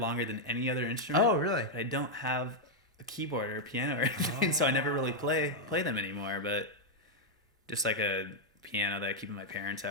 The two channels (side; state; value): both; normal; correlation -0.01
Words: than any other instrument. Oh, really? But I don't have a keyboard or a piano or anything, so I never really play them anymore. But just like a piano that I keep in my parents'